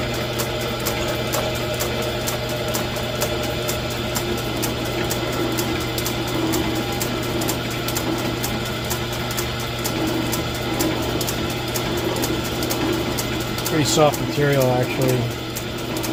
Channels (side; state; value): both; identical; correlation 1.00